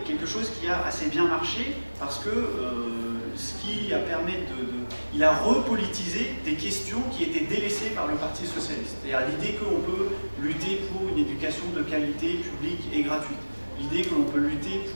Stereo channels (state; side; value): inverted; both; correlation -1.00